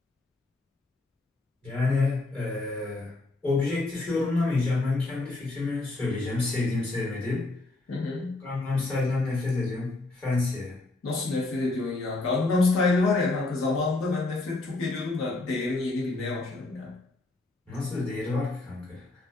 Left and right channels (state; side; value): quieter; right; 3.1 dB